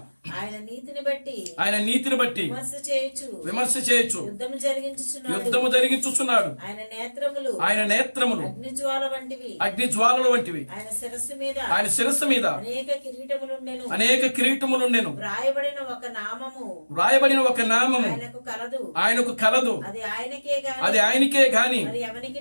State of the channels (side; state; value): both; inverted; correlation -1.00